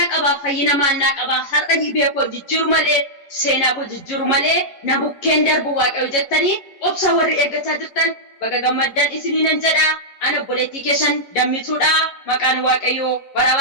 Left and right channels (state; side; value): late; right; 11 ms